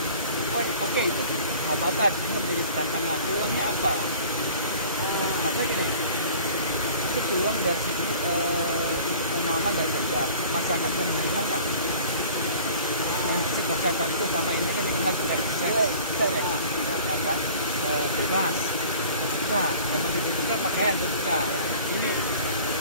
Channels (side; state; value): both; inverted; correlation -0.46